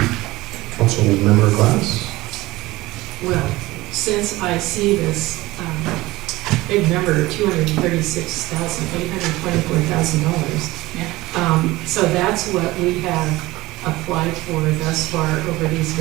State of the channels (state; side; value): quieter; left; 19.2 dB